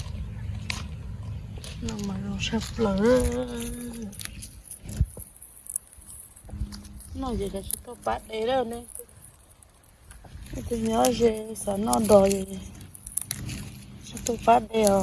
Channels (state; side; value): identical; both; correlation 1.00